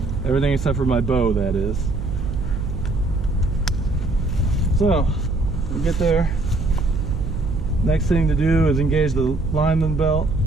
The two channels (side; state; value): right; noise; hum, 4 dB below the sound